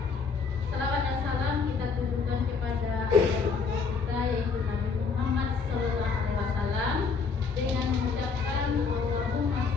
Salawat dan salam kita tujukan kepada kita yaitu Nabi Muhammad Sallallahu Alaihi Wasallam dengan mengucapkan Allahumma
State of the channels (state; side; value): quieter; right; 5.1 dB